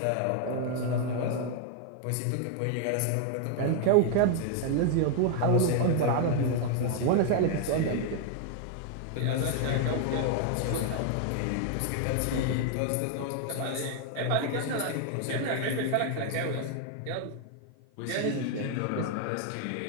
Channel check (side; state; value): both; different; correlation 0.00